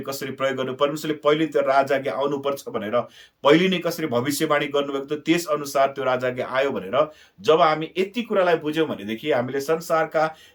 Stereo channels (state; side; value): identical; both; correlation 1.00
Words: कसरी प्रयोग गर्नु, परमेश्वरले पहिले त्यो राजाज्ञा आउनुपर्छ भनेर पहिले नै कसरी भविष्यवाणी गर्नुभएको थियो, त्यस अनुसार त्यो राजाज्ञा आयो भनेर जब हामी यति कुरालाई बुझ्यौँ भनेदेखि हामीले संसारका